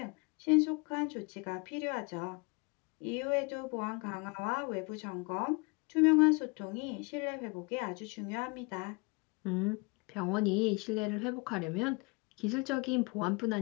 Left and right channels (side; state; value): right; quieter; 29.4 dB